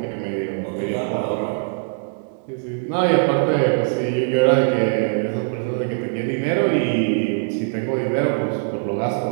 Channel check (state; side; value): silent; left; 59 dB below the other